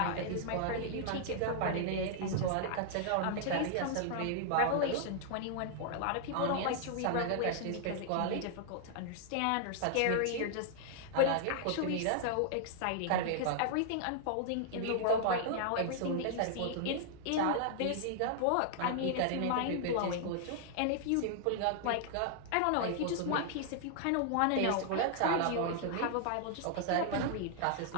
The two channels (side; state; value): both; different; correlation -0.01